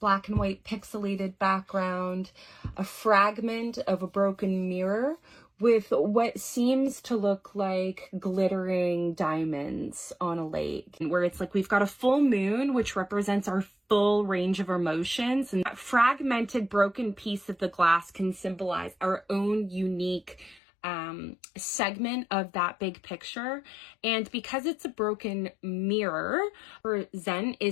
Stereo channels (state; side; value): drops out; right; at 20.6 s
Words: black and white pixelated background, a fragment of a broken mirror with what seems to look like glittering diamonds on a lake, where it's like we've got a full moon, which represents our full range of emotions, and that fragmented broken piece of the glass can symbolize our own unique segment of that big picture. And because it's a broken mirror, for Zen